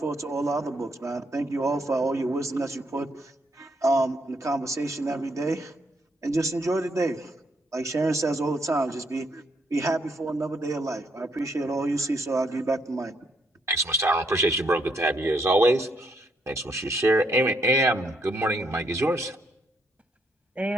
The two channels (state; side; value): normal; both; correlation 0.74